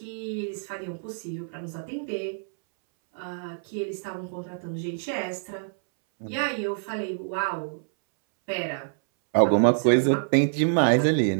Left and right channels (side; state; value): left; silent; 61 dB below the other